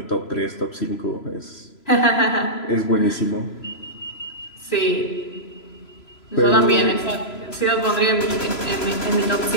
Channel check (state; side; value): late; right; 3.0 ms